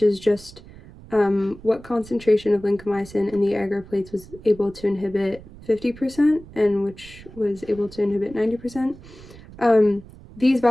is just what concentration of lincomycin in the agar plates was able to inhibit 50% and which was able to inhibit 90%. These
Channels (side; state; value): right; noise; rumble, 19 dB below the sound